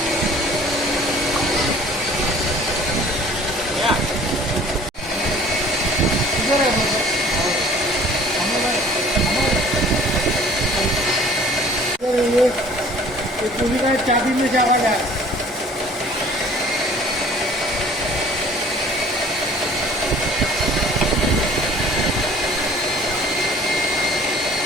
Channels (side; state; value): both; normal; correlation 0.50